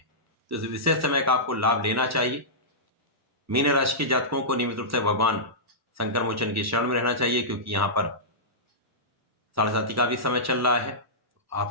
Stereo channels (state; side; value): normal; both; correlation -0.16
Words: तो इस विशेष समय का आपको लाभ लेना चाहिए। मीन राशि के जातकों को नियमित रूप से भगवान शंकर मोचन की शरण में रहना चाहिए, क्योंकि यहाँ पर 7:30 का भी समय चल रहा है।